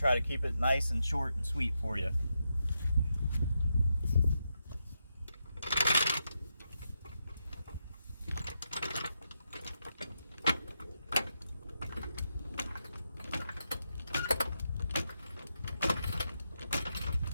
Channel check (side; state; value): both; inverted; correlation -0.84